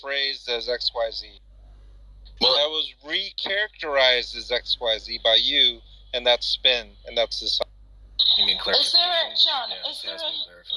phrased as XYZ. Well, that was recharacterized as XYZ by you, and that's spin, and that's the sign. You mean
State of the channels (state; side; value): identical; both; correlation 1.00